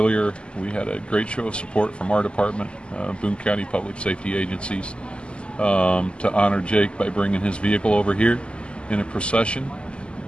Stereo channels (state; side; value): late; right; 0.052 ms